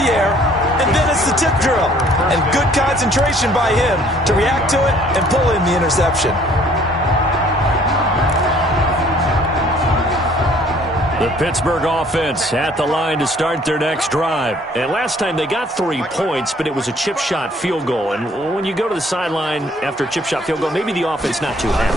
air, and then it's the tip drill. And good concentration by him to react to it and pull in the interception. The Pittsburgh offense at the line to start their next drive. And last time they got 3 points, but it was a chip shot field goal. And when you go to the sideline after a chip shot field goal, maybe the offense not too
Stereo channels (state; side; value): normal; both; correlation 0.58